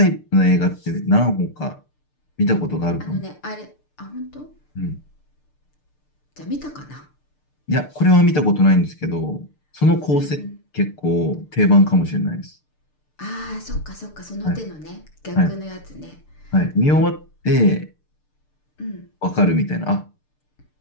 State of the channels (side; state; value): right; late; 6.7 ms